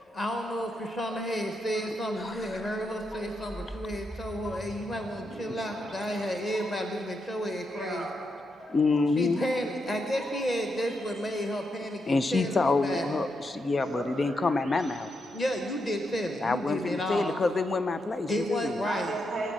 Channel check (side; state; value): both; normal; correlation 0.83